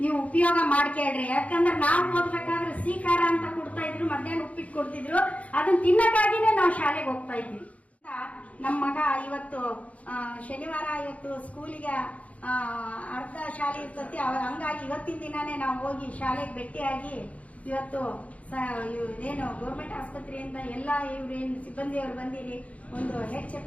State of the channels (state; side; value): late; right; 0.066 ms